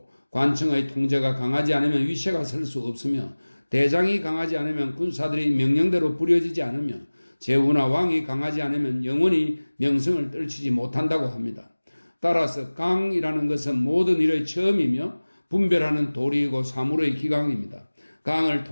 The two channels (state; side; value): inverted; both; correlation -1.00